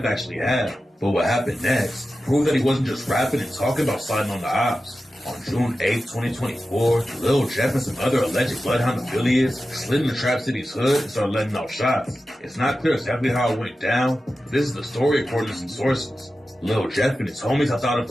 actually had. But what happened next proved that he wasn't just rapping and talking about sliding on the ops. On June 8th, 2024, Lil Jeff and some other alleged Bloodhound affiliates slid into Trap City's hood and started letting out shots. It's not clear exactly how it went down, but this is the story according to some sources. Lil Jeff and his homies hopped out of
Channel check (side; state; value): both; normal; correlation 0.93